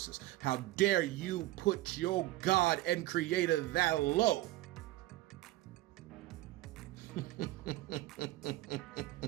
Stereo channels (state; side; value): quieter; left; 17.3 dB